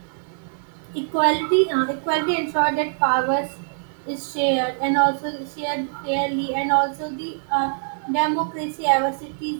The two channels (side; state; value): left; silent; digital silence